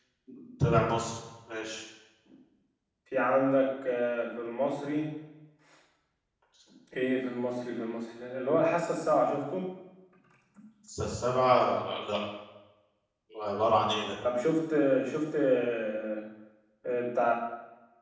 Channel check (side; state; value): both; identical; correlation 1.00